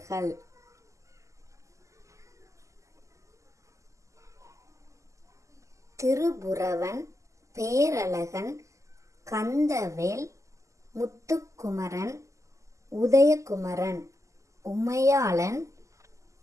திருபுரவன், பேரழகன், கந்தவேல், முத்துக்குமரன், உதயகுமரன், உமையாளன்,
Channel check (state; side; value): late; left; 0.15 ms